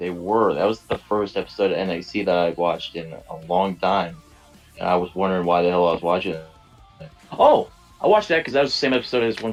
was the first episode of NXT that I watched in a long time. And I was wondering why the hell I was watching it. Oh! I watched that because that was the same episode as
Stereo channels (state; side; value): identical; both; correlation 1.00